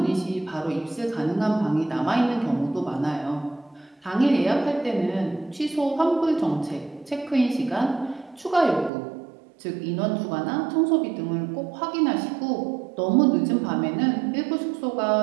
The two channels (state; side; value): drops out; left; at 8.9 s